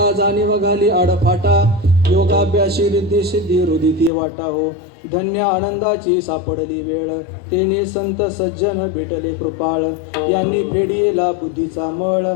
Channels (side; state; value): right; drops out; at 4.1 s